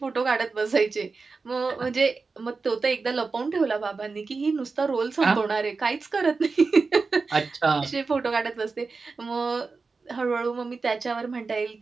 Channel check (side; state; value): left; quieter; 4.3 dB